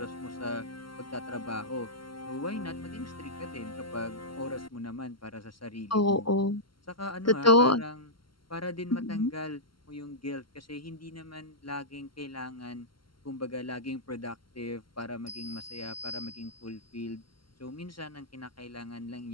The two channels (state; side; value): late; right; 0.73 ms